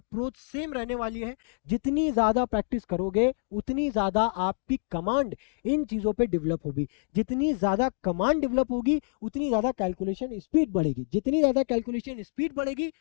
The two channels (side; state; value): right; silent; digital silence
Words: सेम रहने वाली है, जितनी ज़्यादा प्रैक्टिस करोगे उतनी ज़्यादा आपकी कमांड इन चीज़ों पे डेवलप होगी, जितनी ज़्यादा कमांड डेवलप होगी उतनी ज़्यादा कैलकुलेशन स्पीड बढ़ेगी, जितनी ज़्यादा कैलकुलेशन स्पीड बढ़ेगी